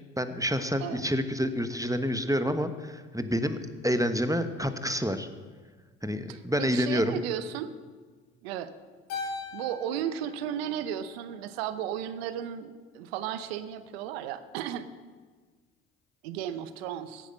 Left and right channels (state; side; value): normal; both; correlation 0.54